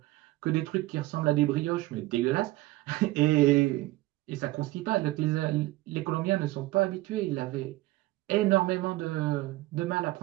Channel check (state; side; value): quieter; left; 18.2 dB